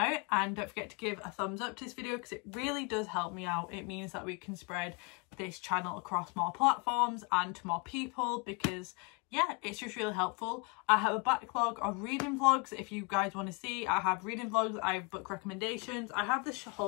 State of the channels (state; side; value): quieter; right; 30.8 dB